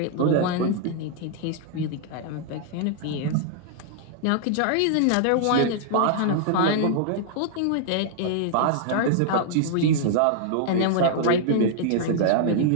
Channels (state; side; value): different; both; correlation -0.01